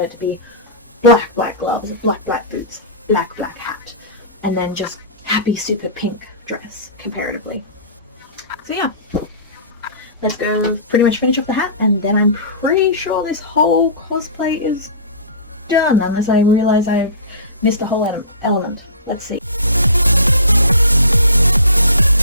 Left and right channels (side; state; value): both; inverted; correlation -0.36